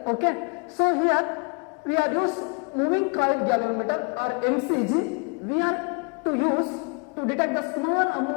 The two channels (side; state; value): right; quieter; 34.1 dB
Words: Okay. So here we are use moving coil galvanometer or MCG. We are to use to detect the small